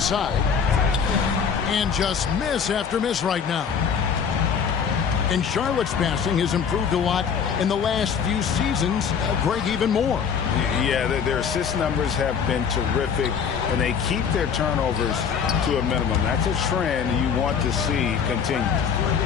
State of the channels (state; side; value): quieter; right; 6.9 dB